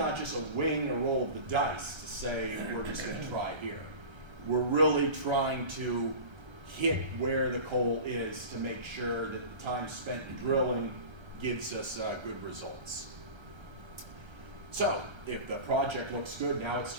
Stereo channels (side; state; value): left; late; 1.3 ms